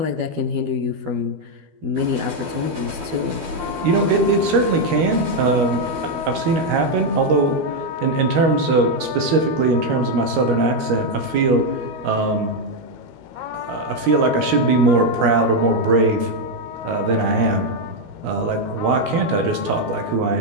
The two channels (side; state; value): left; late; 12 ms